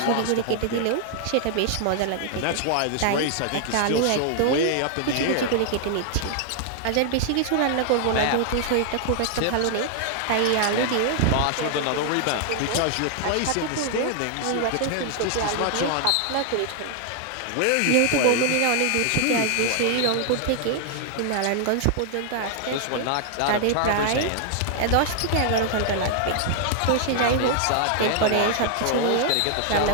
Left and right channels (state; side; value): different; both; correlation 0.00